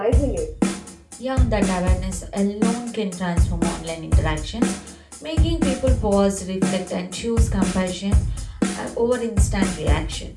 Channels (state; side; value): identical; both; correlation 1.00